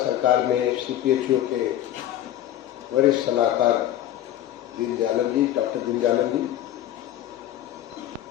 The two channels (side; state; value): right; quieter; 12.4 dB